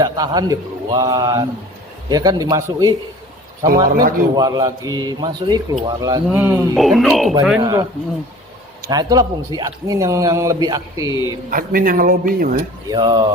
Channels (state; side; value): normal; both; correlation 0.44